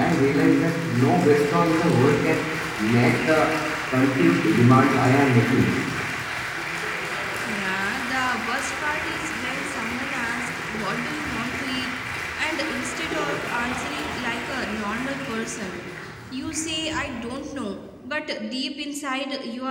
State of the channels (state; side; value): identical; both; correlation 1.00